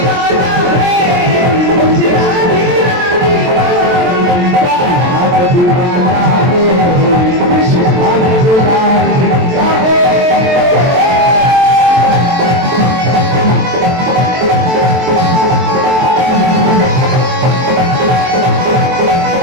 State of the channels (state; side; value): late; left; 23 ms